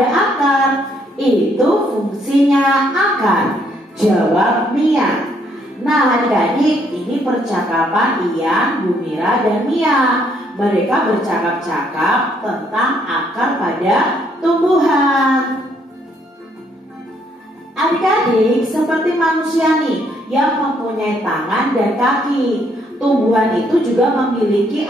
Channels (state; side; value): normal; both; correlation 0.69